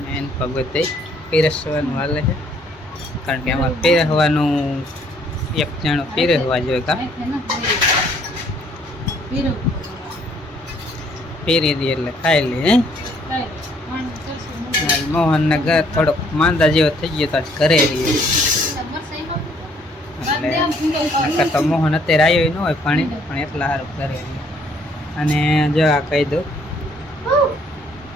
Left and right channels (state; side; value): normal; both; correlation 0.64